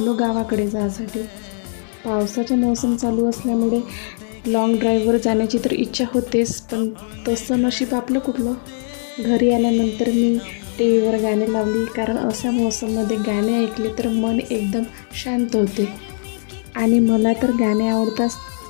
गावाकडे जायसाठी. पावसाचा मोसम चालू असल्यामुळे लाँग ड्राईव्हवर जाण्याची तर इच्छा होतेच, पण तसं नशीब आपलं कुठलं. घरी आल्यानंतर मी टी व्हीवर गाणे लावली, कारण अशा मोसममध्ये गाणे ऐकले तर मन एकदम शांत होते. आणि मला तर गाणे आवडतात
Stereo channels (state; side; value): silent; right; digital silence